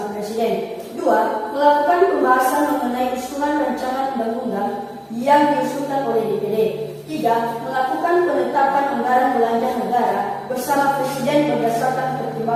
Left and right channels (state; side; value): identical; both; correlation 1.00